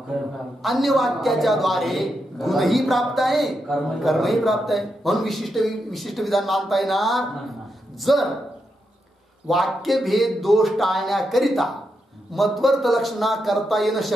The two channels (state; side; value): normal; both; correlation 0.84